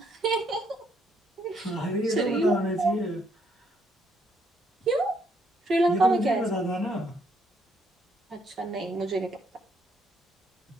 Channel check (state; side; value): normal; both; correlation 0.72